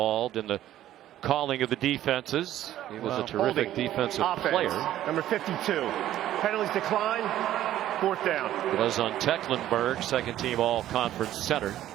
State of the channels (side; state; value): left; quieter; 12.8 dB